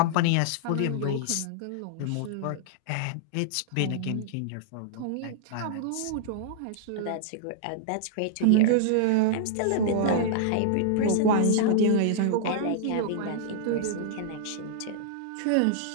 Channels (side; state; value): both; different; correlation -0.01